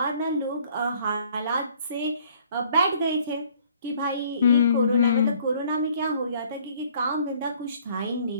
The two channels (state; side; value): inverted; both; correlation -0.59